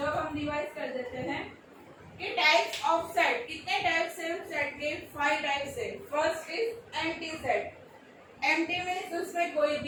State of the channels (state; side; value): identical; both; correlation 1.00